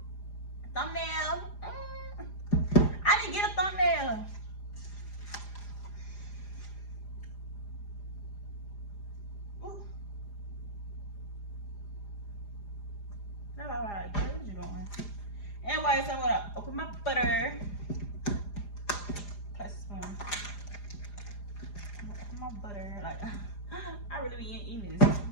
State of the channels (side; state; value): right; late; 4.9 ms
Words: Thumbnail. I didn't get a thumbnail. Ooh. No, all right. What you doing? Anyway, so I'm gonna open my butter. Place a spoon. I'm gonna open my butter. Like, I really be eating this.